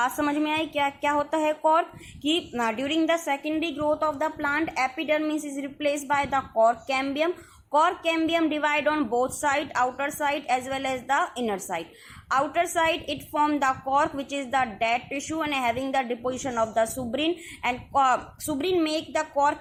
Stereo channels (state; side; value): identical; both; correlation 1.00